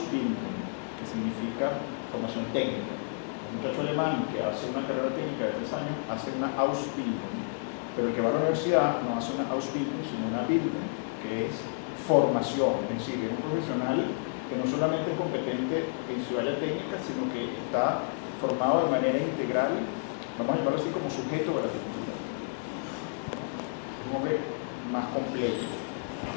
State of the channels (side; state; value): right; silent; digital silence